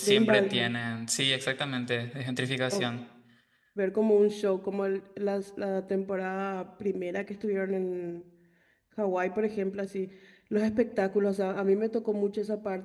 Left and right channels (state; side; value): identical; both; correlation 1.00